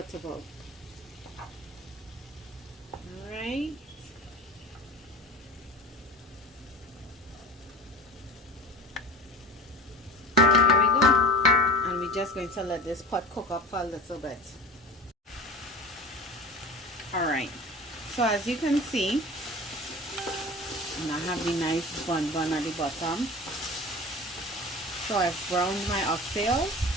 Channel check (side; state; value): both; normal; correlation 0.35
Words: Alright, there we go. And we're just going to let this pot cook up for a little bit. Alright, so as you can see, and I have the nice bun at the bottom. So I've browned my oxtails.